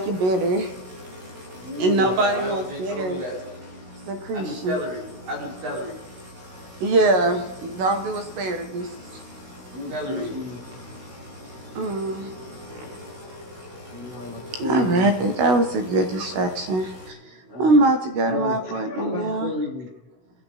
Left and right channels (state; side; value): late; left; 16 ms